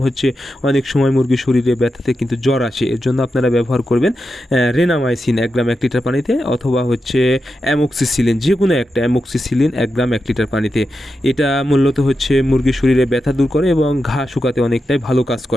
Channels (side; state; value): both; normal; correlation 0.89